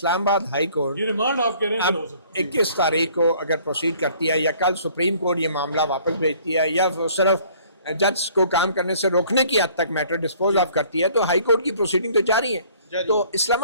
آباد ہائی کورٹ یہ ریمانڈ آپ کہہ رہے ہیں اب 21 تاریخ کو اگر پروسیڈ کرتی ہے یا کل سپریم کورٹ یہ معاملہ واپس بھیجتی ہے یا صرف جج کو کام کرنے سے روکنے کی حد تک میٹر ڈسپوز آف کرتی ہے تو ہائی کورٹ کی پروسیڈنگ تو جاری ہے. تو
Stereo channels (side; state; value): both; inverted; correlation -0.56